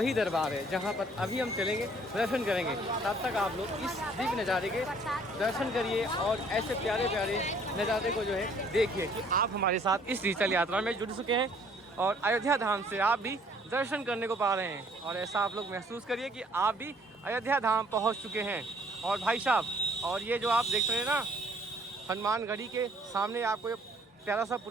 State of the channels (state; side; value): normal; both; correlation 0.59